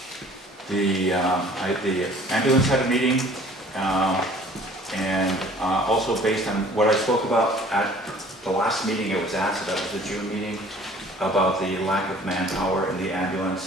The ambulance had a meeting, and also based on what I spoke about at the last meeting it was at, so that was the June meeting, about the lack of manpower in the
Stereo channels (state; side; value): normal; both; correlation 0.51